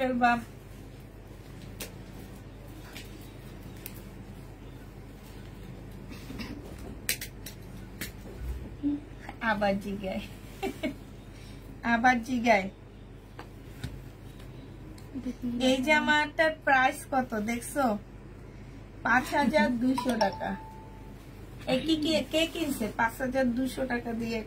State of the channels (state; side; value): identical; both; correlation 1.00